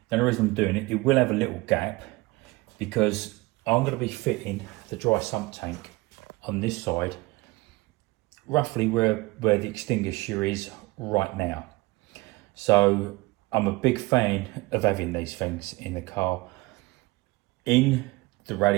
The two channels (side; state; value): left; quieter; 22.6 dB